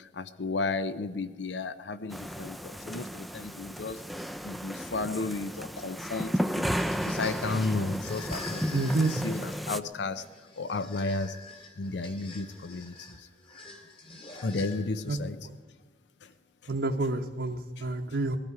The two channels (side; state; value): both; normal; correlation 0.55